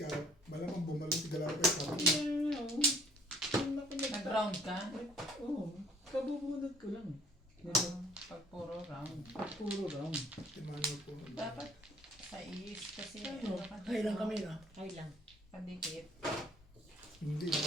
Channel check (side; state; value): both; normal; correlation 0.58